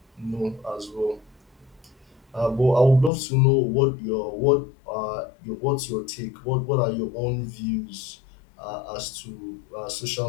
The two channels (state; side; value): drops out; right; at 3.1 s